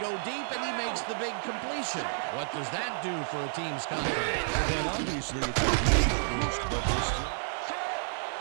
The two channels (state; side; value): silent; left; digital silence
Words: go deep, and he makes the big completion. What does that do for a team's confidence? Well, then obviously it's a huge boost, but there's still...